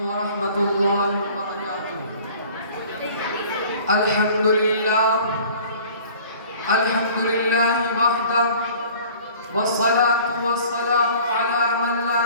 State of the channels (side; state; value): both; inverted; correlation -0.48